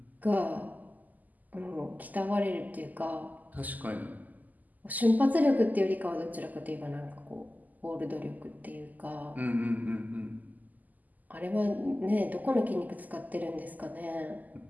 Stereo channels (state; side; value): late; left; 0.081 ms